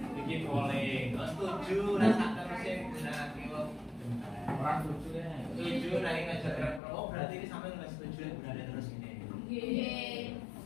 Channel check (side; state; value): right; drops out; at 6.8 s